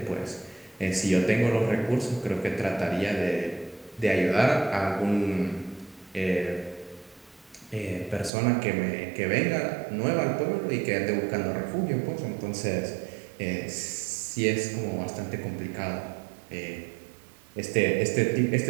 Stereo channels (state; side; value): drops out; left; at 8.3 s